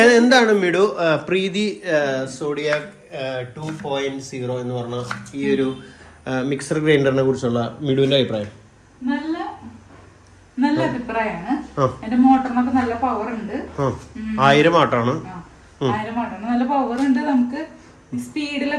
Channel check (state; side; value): identical; both; correlation 1.00